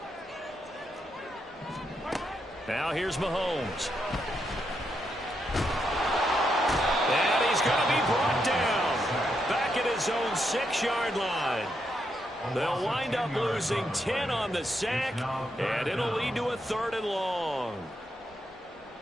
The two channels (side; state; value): both; normal; correlation 0.81